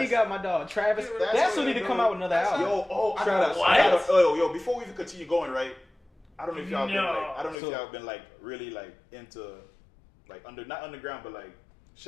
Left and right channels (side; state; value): right; drops out; at 7.6 s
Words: he got my dog Travis. That's who need to come out with another album. I Travis. gotta, yo, before we even continue going, right? I don't know if y'all been No. like, I don't know if So- y'all been like really like into like not underground, but like